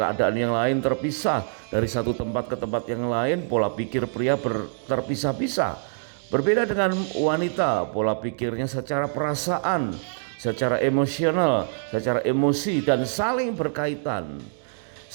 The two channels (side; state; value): left; silent; digital silence